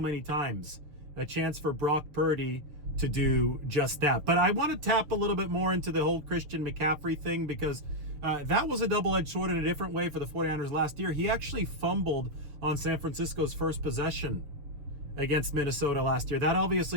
times. A chance for Brock Purdy to do just that. But I want to tap a little bit more into the whole Christian McCaffrey thing, because that was a double-edged sword in a different way for the 49ers last year. He actually fumbled on San Francisco's first possession against Minnesota last year. That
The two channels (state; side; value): late; left; 6.8 ms